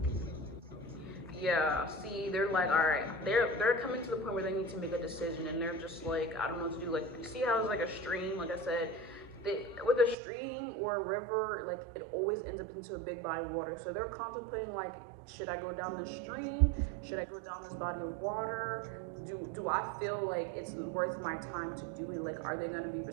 Yeah, see, they're like, all right, they're coming to the point where they need to make a decision, and they're just like, I don't know what to do. Like, you see how it's like a stream, like I said, with a stream or a river, like it always ends up into a big body of water. So they're contemplating like, should I go down the stream? Should I go down this body of water? Do I feel like it's worth my time to do it? Like, are they gonna be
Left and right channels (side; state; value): left; drops out; at 10.2 s